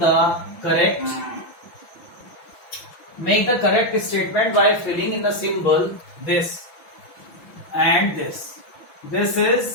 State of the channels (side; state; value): right; late; 6.0 ms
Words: correct statement by filling in the symbol this and this. This is